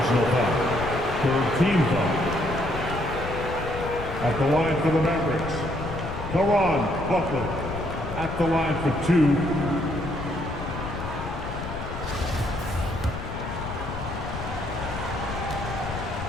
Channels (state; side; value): noise; left; rumble, 8 dB below the sound